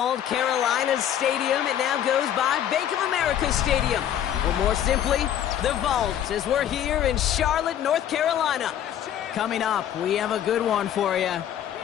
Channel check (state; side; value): quieter; right; 10.5 dB